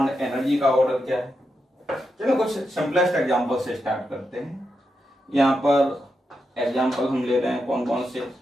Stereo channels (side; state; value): both; normal; correlation 0.86